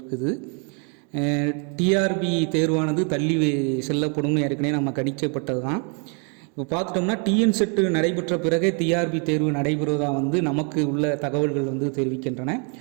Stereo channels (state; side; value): quieter; left; 38.3 dB